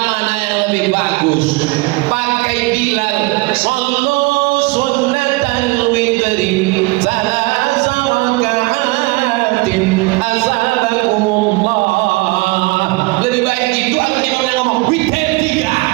mana yang lebih bagus? Pakai Bilal, sallu sunnatan witri salasa raka'atin azabakumullah. Lebih baik itu atau imamnya ngomong witir 3?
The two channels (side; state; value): left; quieter; 23.8 dB